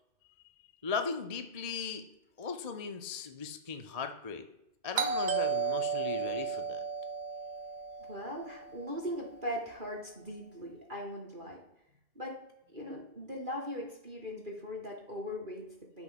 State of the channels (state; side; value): late; left; 1.8 ms